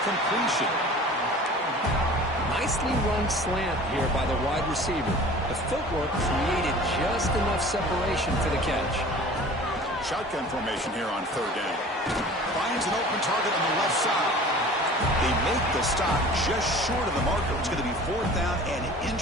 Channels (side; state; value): both; normal; correlation 0.43